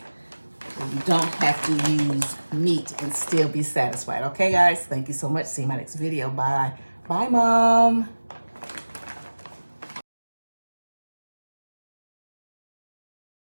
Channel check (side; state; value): both; inverted; correlation -1.00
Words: You don't have to use meat and still be satisfied. Okay, guys? Thank you so much. See you in my next video. Bye. Bye, Mom.